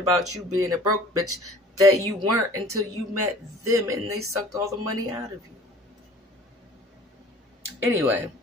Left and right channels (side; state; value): both; normal; correlation 0.48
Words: you being a broke bitch that you weren't until you met them and they sucked all the money out of you. Anyway,